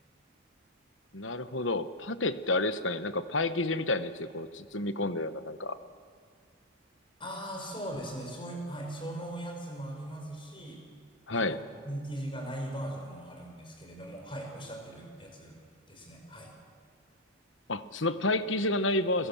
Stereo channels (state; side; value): normal; both; correlation -0.01